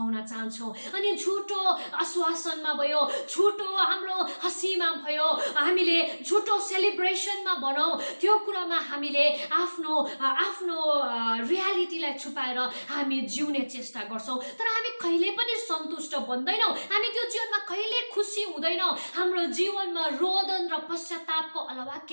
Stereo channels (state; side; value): inverted; both; correlation -1.00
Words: चाहन्छौँ। अनि झुटो आश्वासनमा भयो, झुटो हाम्रो हँसीमा भयो, हामीले झुटो सेलिब्रेसनमा भनौँ, त्यो कुरामा हामीले आफ्नो रियालिटीलाई छुपाएर हामी जिउने चेष्टा गर्छौँ। तर हामी कहिले पनि सन्तुष्ट बन्दैनौँ, हामी त्यो जीवनमा कहिले खुसी हुँदैनौँ, हाम्रो जीवनमा रोदन र पश्चातापको अलावा